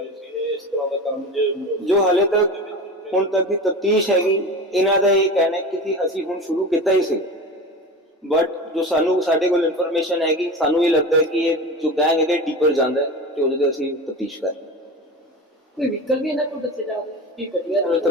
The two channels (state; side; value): normal; both; correlation 0.30